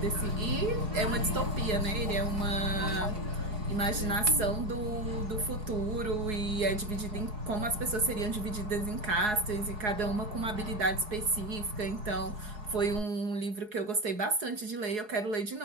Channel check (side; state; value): left; late; 4.7 ms